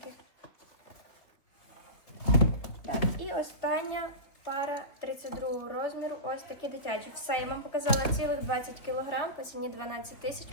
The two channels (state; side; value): late; right; 3.5 ms